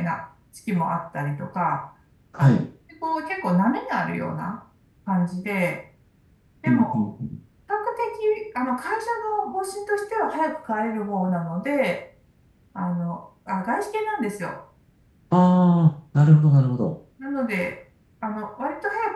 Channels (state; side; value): identical; both; correlation 1.00